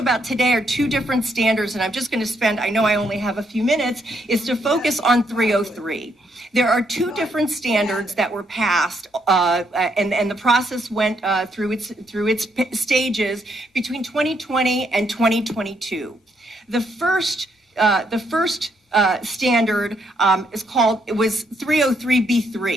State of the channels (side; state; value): both; normal; correlation 0.74